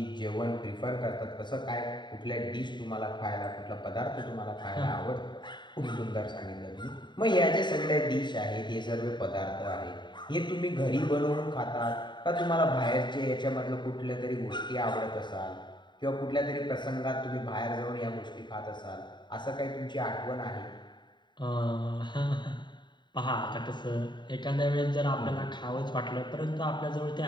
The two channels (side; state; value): right; late; 0.22 ms